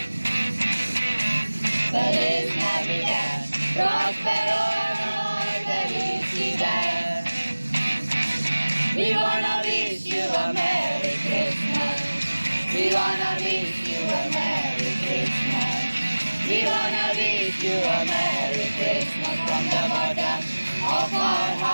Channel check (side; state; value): both; inverted; correlation -1.00